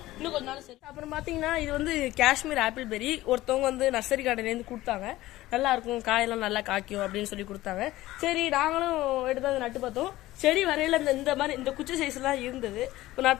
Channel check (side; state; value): right; quieter; 16.7 dB